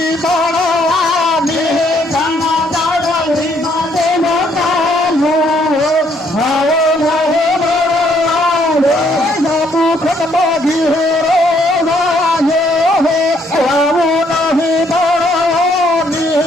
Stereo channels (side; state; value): both; normal; correlation 0.68